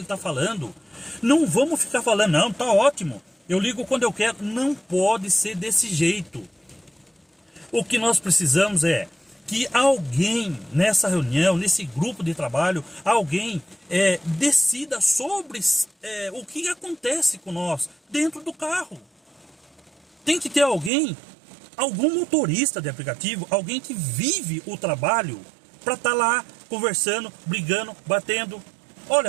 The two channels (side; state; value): left; drops out; at 20.9 s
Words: está falando. Não vamos ficar falando, não, tá ótimo. Eu ligo quando eu quero. Não pode ser desse jeito. O que nós precisamos é que alguém nessa reunião, nesse grupo de trabalho, alguém decida sobre o que acontece com nós dentro do carro. Tem que ter alguém, algum motorista de aplicativo, alguém que vive o trabalho para estar lá conversando, brigando, batendo.